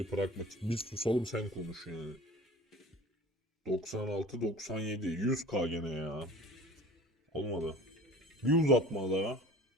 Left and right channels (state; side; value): normal; both; correlation 0.43